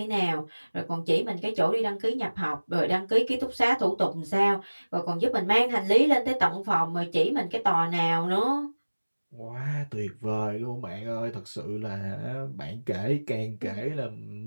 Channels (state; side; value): inverted; both; correlation -1.00